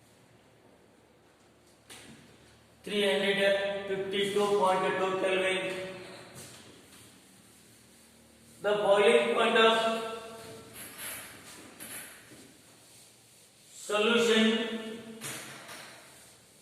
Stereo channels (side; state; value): both; identical; correlation 1.00